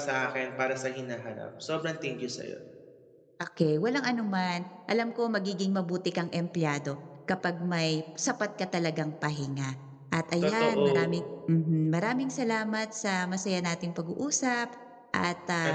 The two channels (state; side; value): identical; both; correlation 1.00